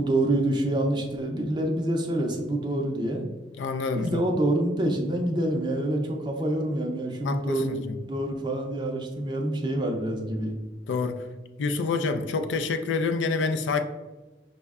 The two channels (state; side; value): normal; both; correlation 0.61